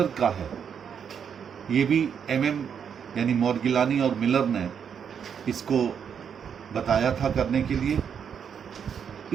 का है। ये भी एमएम यानी मॉर्गिलानी और मिलर ने इसको बताया था करने के लिए।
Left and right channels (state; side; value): quieter; left; 7.5 dB